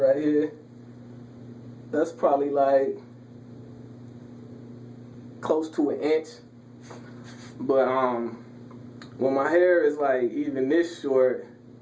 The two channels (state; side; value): identical; both; correlation 1.00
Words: here. That's probably like close to an inch. But when my hair is like even this short,